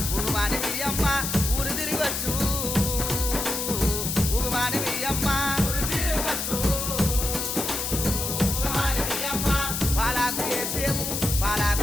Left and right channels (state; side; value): noise; left; hiss, 2 dB below the sound